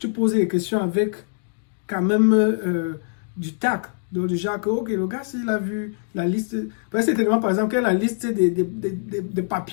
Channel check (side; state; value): right; silent; digital silence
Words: poses des questions avec quand même du tact. Donc, du genre que, ok, le gars, s'il a vu la liste, c'est tellement, par exemple, qu'il y a la liste des